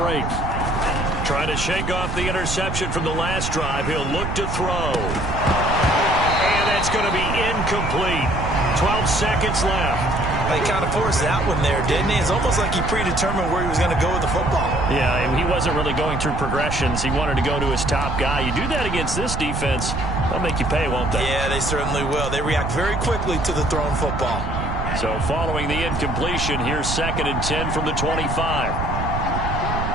Trying to shake off the interception from the last drive. He'll look to throw. And that's going to be incomplete. 12 seconds left. They kind of forced that one there, didn't he? It's almost like he predetermined where he was going to go with the football. Yeah, he wasn't really going through progressions. He wanted to go to his top guy. You do that against this defense, they'll make you pay, won't they? Yeah, they certainly will. They react very quickly to the thrown football. So following the incompletion, here's 2nd and 10 from the 25.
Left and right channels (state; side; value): noise; right; rumble, 3 dB below the sound